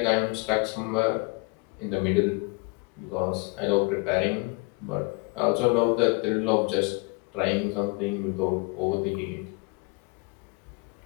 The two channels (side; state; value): right; quieter; 30.0 dB